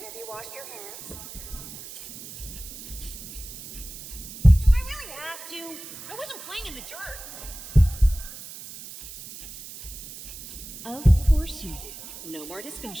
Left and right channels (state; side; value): noise; right; hiss, 13 dB below the sound